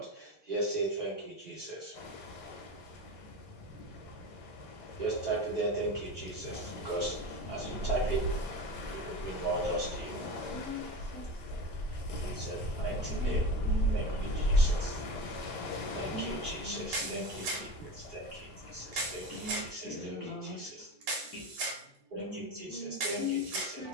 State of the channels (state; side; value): normal; both; correlation 0.27